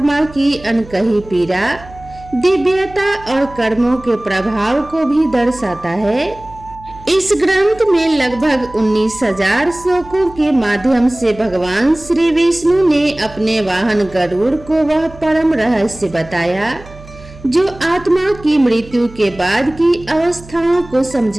की अनकही पीड़ा, दिव्यता और कर्मों के प्रभाव को भी दर्शाता है। इस ग्रंथ में लगभग 19,000 श्लोकों के माध्यम से भगवान श्री विष्णु ने अपने वाहन गरुड़ को वह परम रहस्य बताया जो आत्मा की मृत्यु के बाद की अवस्थाओं को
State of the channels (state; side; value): noise; right; hum, 19 dB below the sound